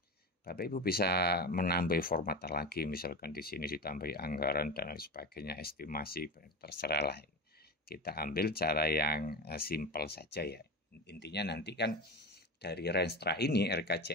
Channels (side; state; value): both; normal; correlation 0.25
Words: Bapak Ibu bisa menambah format lagi, misalkan di sini ditambahi anggaran dan lain sebagainya, estimasi, terserah lah. kita ambil cara yang simpel saja ya. Intinya nanti kan dari Renstra ini,